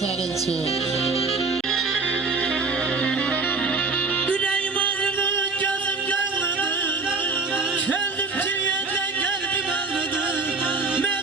sənin üçün. Ürəyim ağrıdı, gözüm görmürdü. Könlüm ciğerlə qəlbim ağrıdı.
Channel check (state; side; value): quieter; left; 4.1 dB